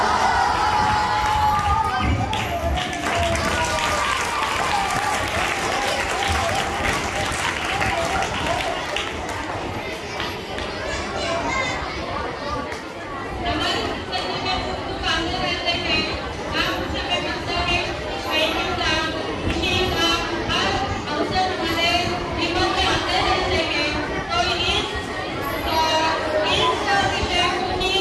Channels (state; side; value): identical; both; correlation 1.00